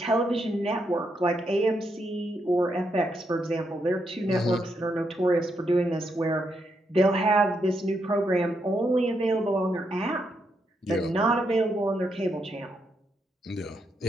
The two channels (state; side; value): normal; both; correlation 0.80